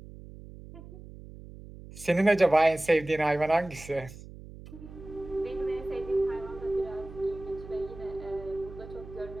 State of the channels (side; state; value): right; noise; hum, 15 dB below the sound